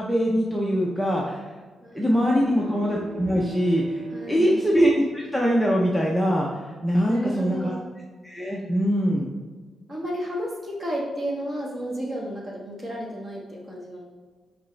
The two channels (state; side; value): normal; both; correlation 0.90